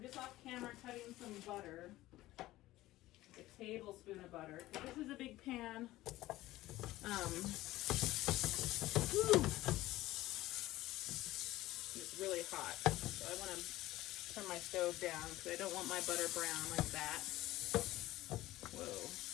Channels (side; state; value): right; quieter; 16.7 dB